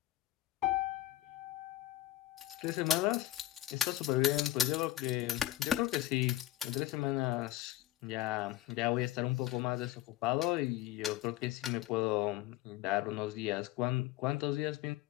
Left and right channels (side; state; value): right; quieter; 14.7 dB